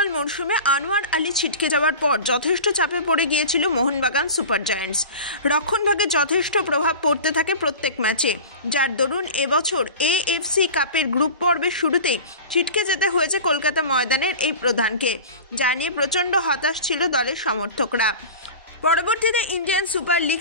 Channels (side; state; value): both; inverted; correlation -0.34